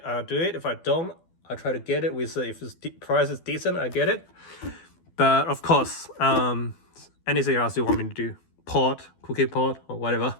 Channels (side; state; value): right; late; 12 ms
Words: I'll do it. If I don't, I'll try to get it with if the price is decent, I get it. But of course, anything else you want me to do, cookie pot, or whatever.